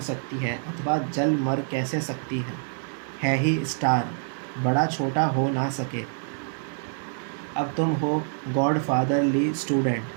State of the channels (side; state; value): left; silent; 61 dB below the other